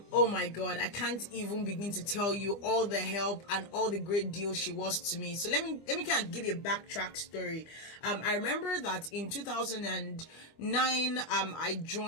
my god, I can't even begin to tell you all the help and all the great deals she was to me. So let me kind of give you a backtrack story. I remember that in 2009 I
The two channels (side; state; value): right; late; 25 ms